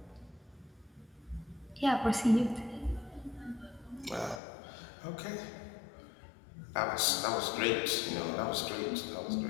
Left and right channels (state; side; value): drops out; right; at 4.4 s